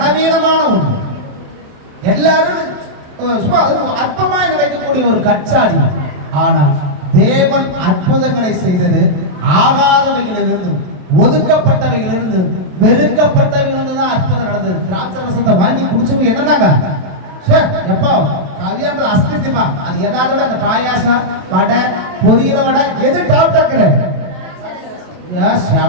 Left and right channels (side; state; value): left; late; 28 ms